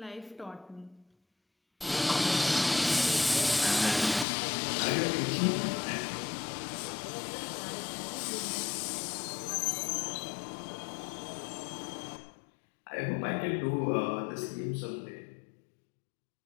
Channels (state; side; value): drops out; right; at 4.2 s